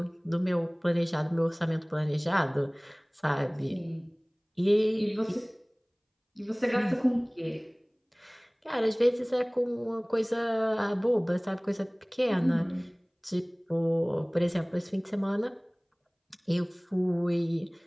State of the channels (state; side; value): identical; both; correlation 1.00